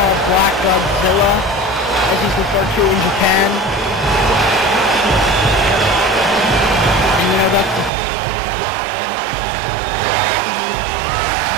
Black Godzilla, as he's referred to in Japan. And you know, that's the thing, is these two guys, very, very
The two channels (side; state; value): left; drops out; at 7.9 s